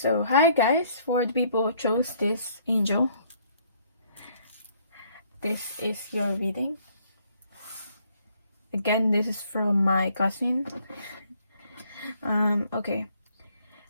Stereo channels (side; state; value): both; inverted; correlation -0.64